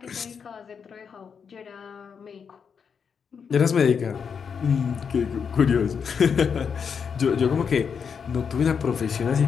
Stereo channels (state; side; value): quieter; right; 6.5 dB